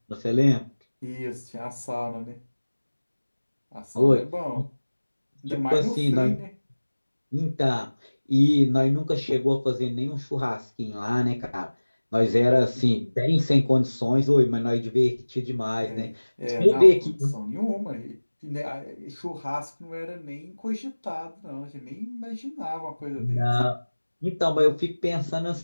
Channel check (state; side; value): inverted; both; correlation -1.00